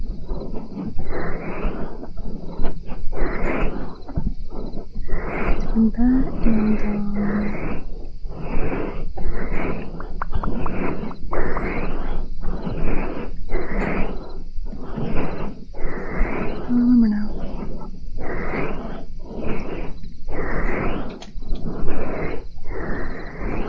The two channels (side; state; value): both; identical; correlation 1.00